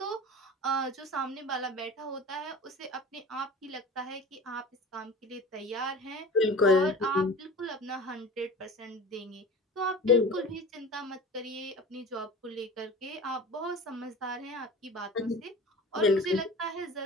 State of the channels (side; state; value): both; normal; correlation 0.36